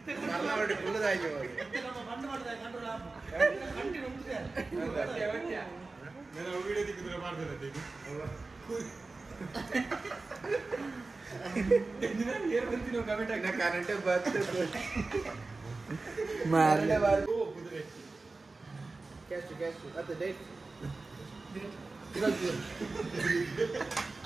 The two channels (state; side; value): quieter; left; 3.6 dB